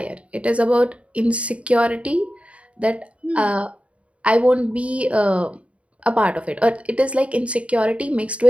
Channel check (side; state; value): left; late; 0.063 ms